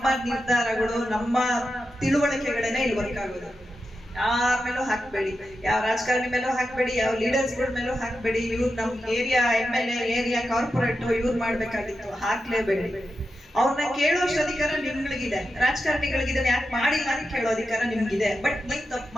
ನಿರ್ಧಾರಗಳು, ನಮ್ಮ ತಿಳುವಳಿಕೆಗಳೇನೆ ಇಲ್ಲಿ ವರ್ಕ್ ಆಗೋದು. ಯಾರ ಮೇಲೂ ಹಾಕ್ಬೇಡಿ, ಯಾವ ರಾಜಕಾರಣಿ ಮೇಲೂ ಹಾಕ್ಬೇಡಿ, ಯಾವ ಲೀಡರ್ಸ್ಗಳ ಮೇಲೂ ಹಾಕ್ಬೇಡಿ. ಇವ್ರು ನಮ್ ಏರಿಯಾ MLA, ಏರಿಯಾ ಕಾರ್ಪೊರೇಟ್ ಇವ್ರು ಮಾಡ್ಬೇಕಾಗಿತ್ತು, ಹಾಕ್ಲೇಬೇಡಿ. ಅವ್ರನ್ನ ಕೇಳೋಷ್ಟು ಅಧಿಕಾರ ನಿಮ್ಗಳಿಗಿದೆ, ರಾಜಕಾರಣಿಗಳಿಗಿದೆ. ಯಾಕೆ ಮಾಡಿಲ್ಲ ಅಂತ ಕೇಳೋ ಅಧಿಕಾರ ನಿಮ್ಗಿದೆ. ಬಟ್ ನೀವ್ ತಪ್ಪು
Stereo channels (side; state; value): both; normal; correlation 0.90